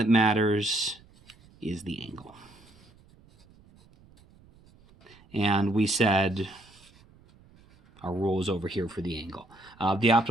matters is the angle. and we said our rule is over here for the angle. The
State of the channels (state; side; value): noise; right; rumble, 27 dB below the sound